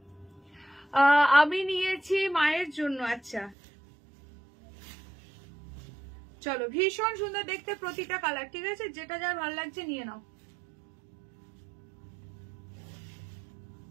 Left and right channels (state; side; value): drops out; left; at 3.6 s